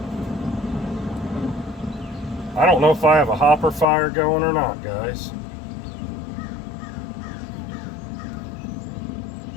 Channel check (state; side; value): drops out; right; at 3.9 s